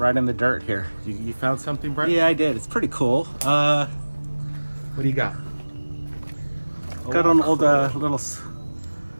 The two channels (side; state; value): both; inverted; correlation -1.00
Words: in the dirt here. You found something, Bright? Yeah, I did. It's pretty cool. What do you got? Got an old little